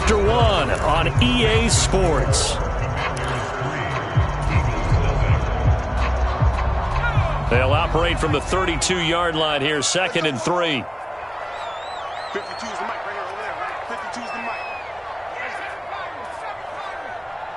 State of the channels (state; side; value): identical; both; correlation 1.00